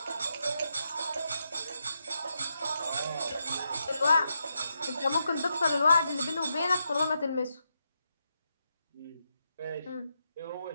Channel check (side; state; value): both; inverted; correlation -0.84